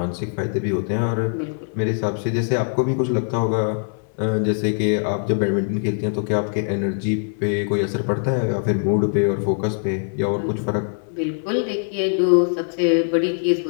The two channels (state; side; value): silent; right; 64 dB below the other